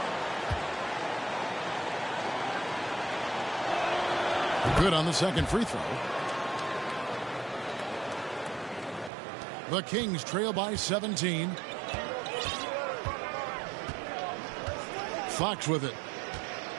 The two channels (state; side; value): drops out; left; at 9.1 s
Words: Good on the second free throw. The Kings trail by 17. Fox with it.